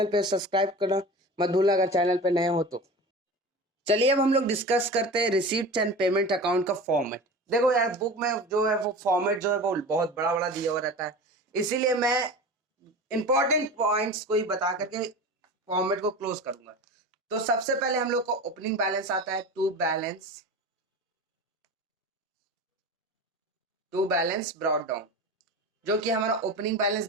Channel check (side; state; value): both; normal; correlation 0.33